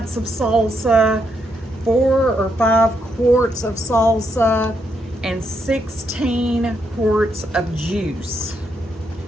of salsa, 4 or 5 quarts of salsa, and 16 quarts of juice,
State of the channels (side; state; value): both; normal; correlation 0.78